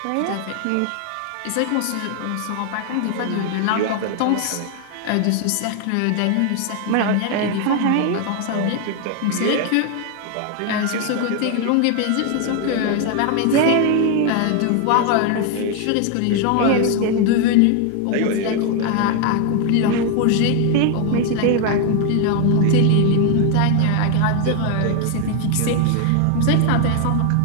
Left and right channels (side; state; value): both; different; correlation 0.01